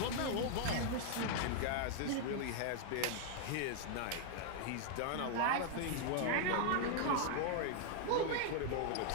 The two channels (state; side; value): different; both; correlation 0.00